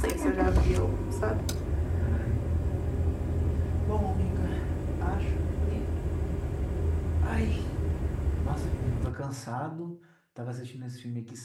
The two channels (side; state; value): both; identical; correlation 1.00